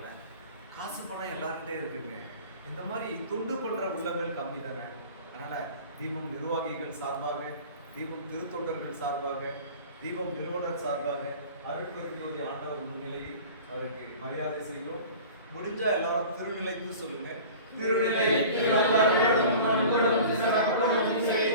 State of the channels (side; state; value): both; inverted; correlation -0.41